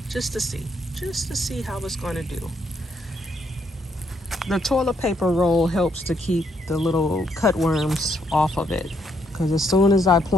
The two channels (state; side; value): normal; both; correlation 0.73